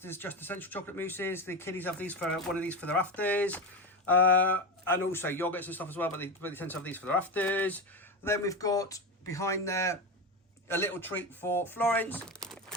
Just Essential chocolate mousses. The kiddies have these for one of these for their afters. And also yogurts and stuff as well, but they tend to have these for their afters. Then we've got behind there a little treat for Florence.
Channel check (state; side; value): normal; both; correlation 0.17